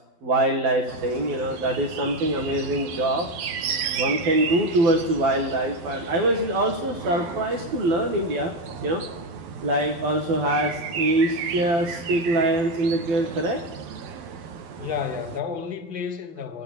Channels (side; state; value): left; late; 12 ms